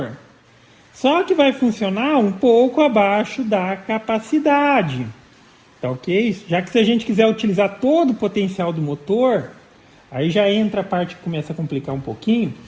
Só que vai funcionar um pouco abaixo da capacidade, tá ok? Já que se a gente quiser utilizar todo o potencial do motor, aí já entra a parte que começa a complicar um pouquinho,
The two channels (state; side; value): identical; both; correlation 1.00